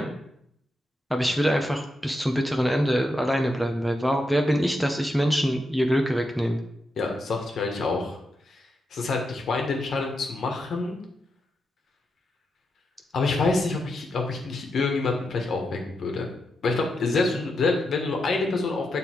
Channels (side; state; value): both; normal; correlation 0.85